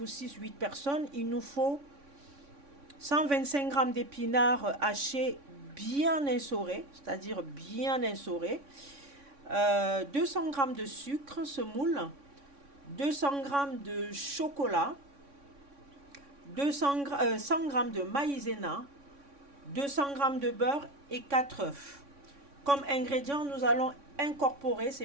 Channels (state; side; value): late; left; 3.6 ms